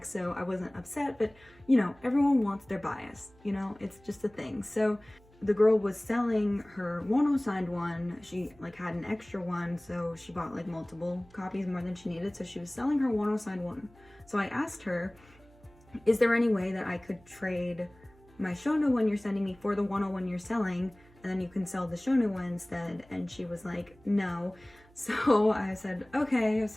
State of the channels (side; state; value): right; noise; hum, 27 dB below the sound